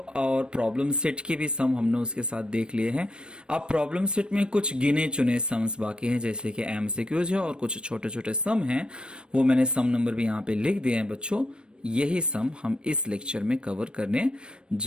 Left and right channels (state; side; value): late; left; 0.054 ms